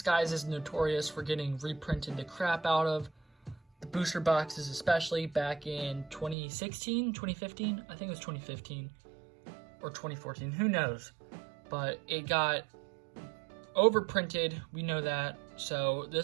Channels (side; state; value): left; drops out; at 6.4 s